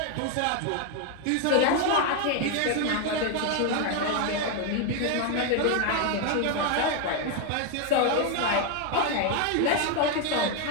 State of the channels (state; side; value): different; both; correlation 0.01